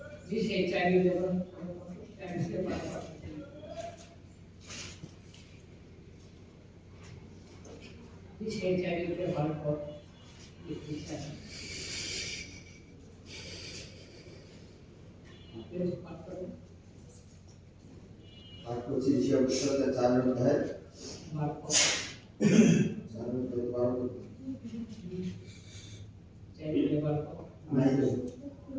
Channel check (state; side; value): identical; both; correlation 1.00